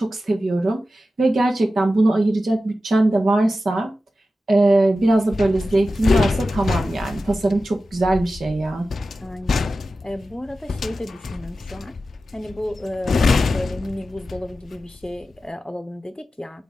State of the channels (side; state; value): both; normal; correlation 0.93